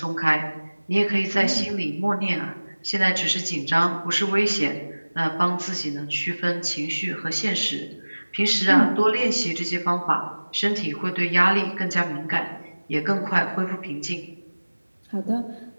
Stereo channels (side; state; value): both; inverted; correlation -1.00